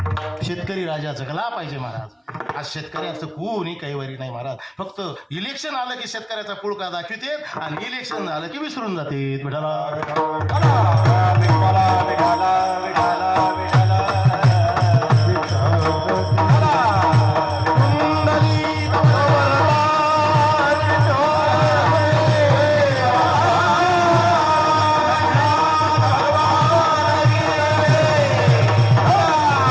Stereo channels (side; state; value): both; identical; correlation 1.00